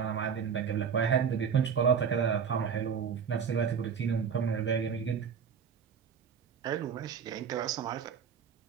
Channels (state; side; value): quieter; left; 7.0 dB